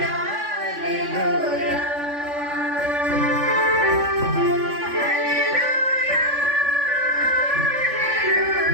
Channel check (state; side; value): late; left; 3.5 ms